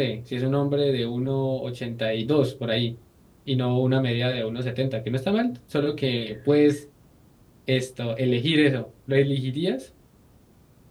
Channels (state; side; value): identical; both; correlation 1.00